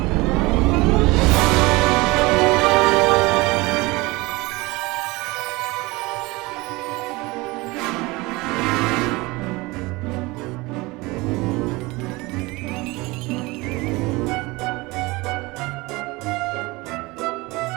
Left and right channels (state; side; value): quieter; left; 22.8 dB